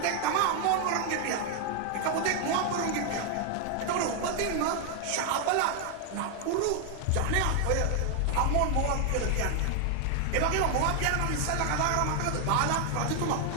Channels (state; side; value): different; both; correlation 0.00